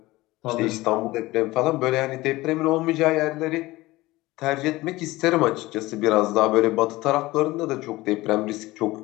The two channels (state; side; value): quieter; right; 19.4 dB